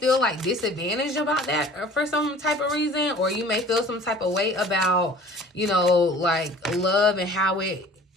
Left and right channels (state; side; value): normal; both; correlation 0.47